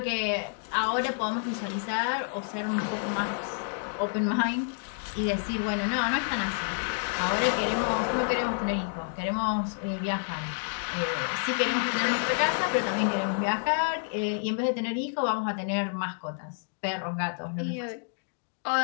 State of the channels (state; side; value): silent; right; digital silence